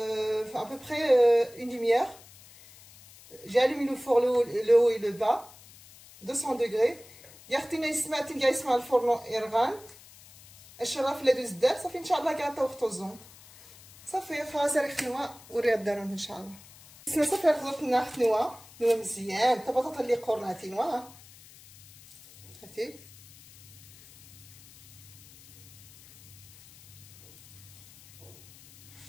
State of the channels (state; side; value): noise; left; hiss, 21 dB below the sound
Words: à peu près une demi-heure. J'ai allumé le four le haut et le bas 200 degrés. يختينا يسمع تنقع يسمع الفرن يرغان الشراف اللي دوز دار صافي ان شاء الله كاع طوختو الزون صافي خلاص راه خنوا وريها الدارون ان شاء الله. السما صافي خضرتنا خنوا مزيان حتى بطاطا اللي قرناتي نوا هاتي